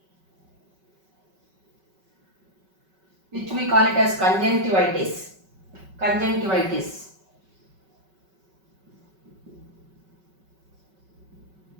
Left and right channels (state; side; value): late; left; 5.3 ms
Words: which we call it as conjunctivitis. Conjunctivitis.